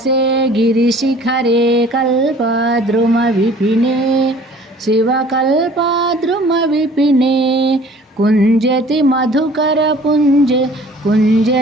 गिरिशिखरे कल्पद्रुमविपिने शिवकल्पद्रुमविपिने कुञ्जति मधुकरपुञ्जे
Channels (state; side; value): normal; both; correlation 0.51